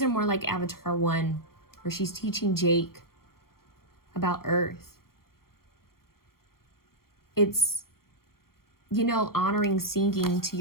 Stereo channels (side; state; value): right; late; 0.93 ms